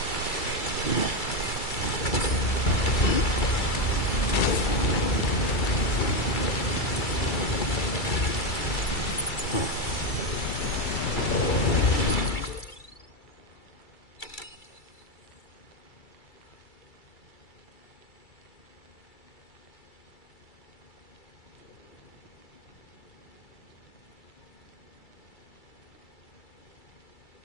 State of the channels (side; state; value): right; late; 2.3 ms